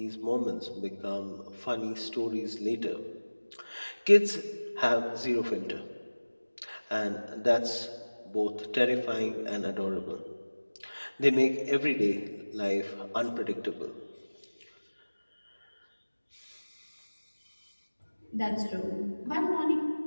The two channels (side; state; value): both; inverted; correlation -1.00